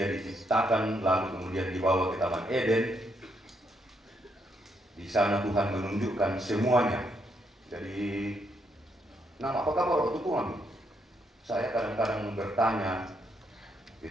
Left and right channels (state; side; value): normal; both; correlation 0.76